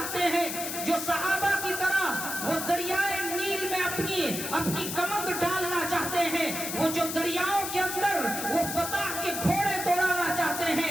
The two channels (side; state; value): left; noise; hiss, 5 dB below the sound